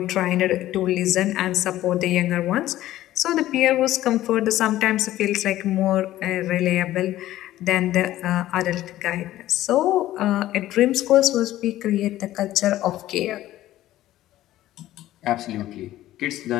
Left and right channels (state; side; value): quieter; right; 14.4 dB